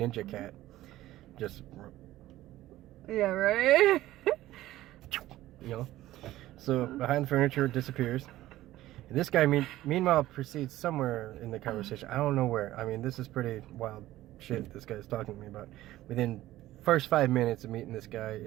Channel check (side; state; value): left; quieter; 15.4 dB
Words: cat. Just, Yeah, right? you know. So behind the furniture, it disappears. And this guy, meanwhile, proceeds somewhere in the conversation. I don't know where. I mean, this is pretty wild shit this guy's talking to me about. Within first 5 minutes of meeting this guy